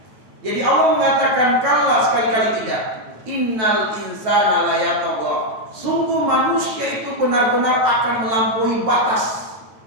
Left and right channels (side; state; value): left; late; 9.1 ms